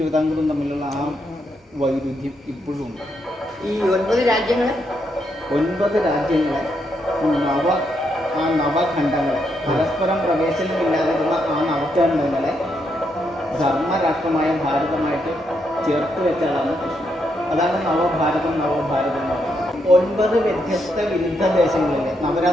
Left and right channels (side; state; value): both; normal; correlation 0.79